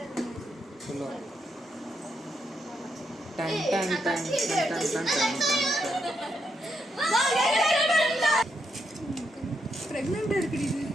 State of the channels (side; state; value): both; normal; correlation 0.80